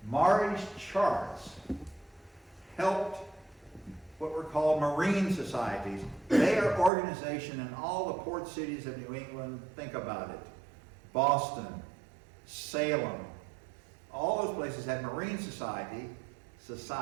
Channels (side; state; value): left; drops out; at 6.9 s